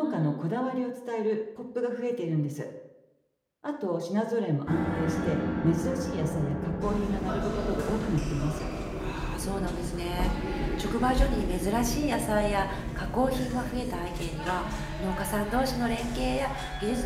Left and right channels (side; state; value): both; identical; correlation 1.00